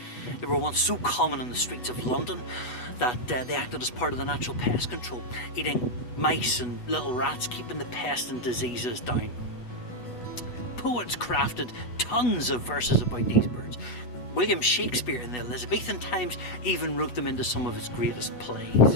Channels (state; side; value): late; right; 8.1 ms